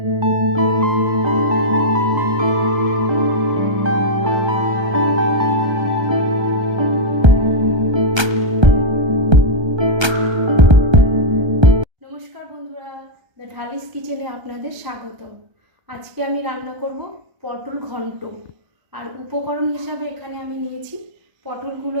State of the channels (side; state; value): left; late; 1.3 ms